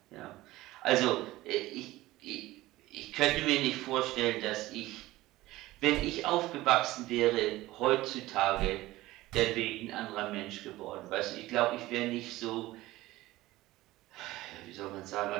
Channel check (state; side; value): quieter; left; 17.6 dB